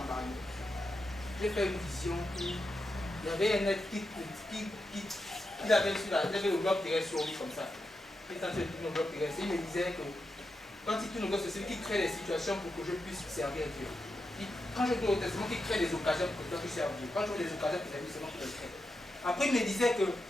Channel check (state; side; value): normal; both; correlation 0.87